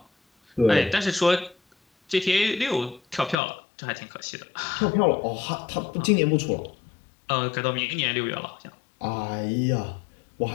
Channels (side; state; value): right; drops out; at 3.4 s